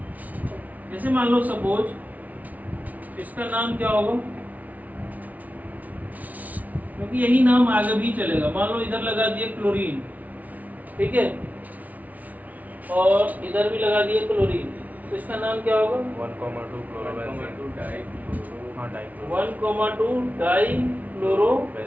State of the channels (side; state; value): left; late; 0.074 ms